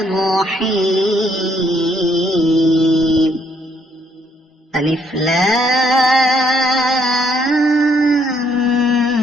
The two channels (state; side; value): normal; both; correlation 0.69